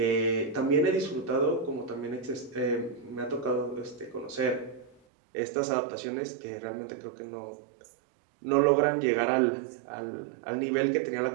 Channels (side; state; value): left; drops out; at 5.0 s